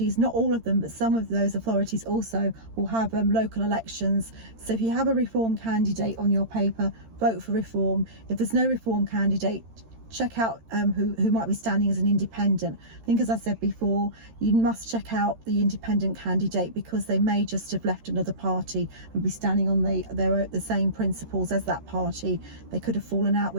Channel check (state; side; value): late; left; 13 ms